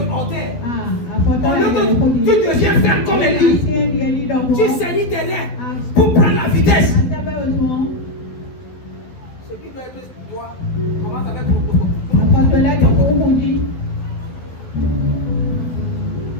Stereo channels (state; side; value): late; right; 12 ms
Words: Au lieu que tu deviens ferme comme Élie, tu saignes tes reins pour prendre la vitesse. Ce qui doit être toi, commence avec